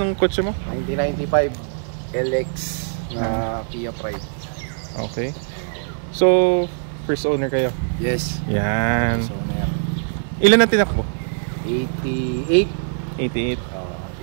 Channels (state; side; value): silent; left; digital silence